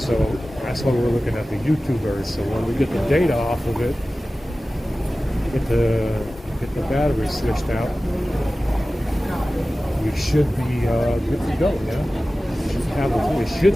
that's why we're looking at the YouTubers. So when we get the data off of it, get the get the battery switched out, we should be good to go. Yeah, it should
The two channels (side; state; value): both; normal; correlation 0.96